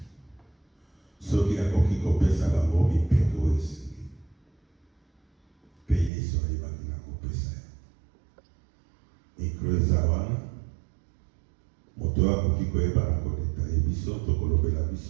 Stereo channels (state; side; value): drops out; left; at 6.1 s